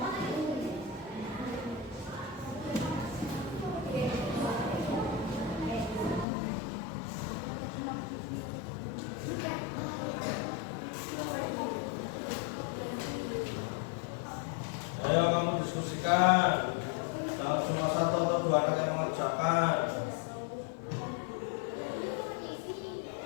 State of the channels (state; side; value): drops out; right; at 6.2 s